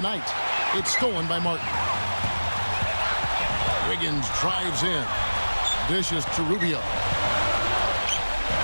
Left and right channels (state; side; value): inverted; both; correlation -1.00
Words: It's stolen by Martin. Wiggins drives in. Dishes to Rubio.